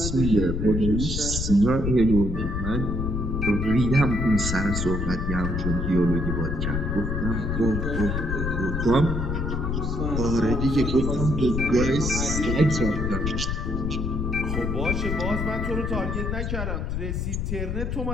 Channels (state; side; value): noise; left; rumble, 1 dB below the sound